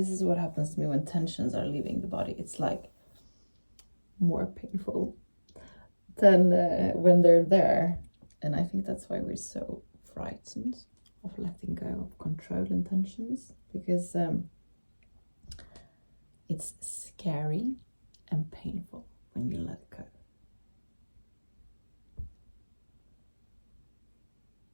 is what happens to me when tensions are leaving the body. It's like more painful than when they're there. And I think that's why we're so frightened of letting go of control and tensions, because it's scary and painful when you let go.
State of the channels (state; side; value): inverted; both; correlation -1.00